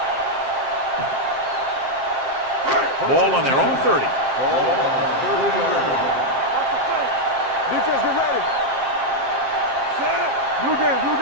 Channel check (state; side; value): late; left; 7.5 ms